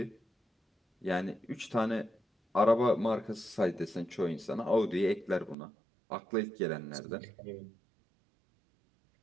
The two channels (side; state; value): left; drops out; at 5.6 s